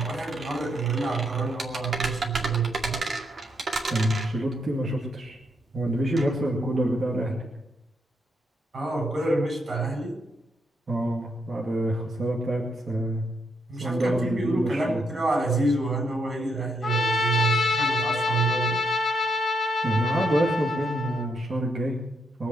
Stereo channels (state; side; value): normal; both; correlation 0.78